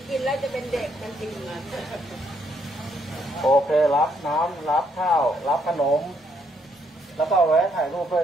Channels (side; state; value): both; normal; correlation 0.72